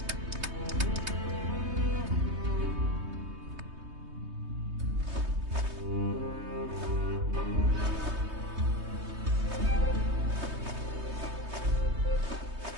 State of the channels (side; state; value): left; late; 3.2 ms